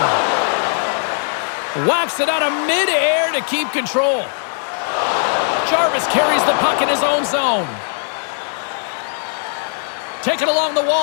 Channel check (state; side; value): silent; right; digital silence